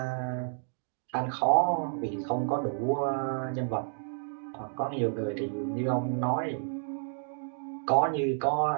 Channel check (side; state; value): left; silent; digital silence